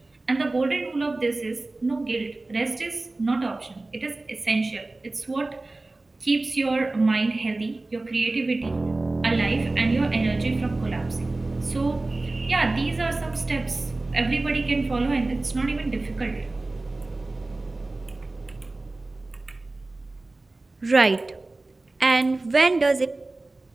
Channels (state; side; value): quieter; left; 3.1 dB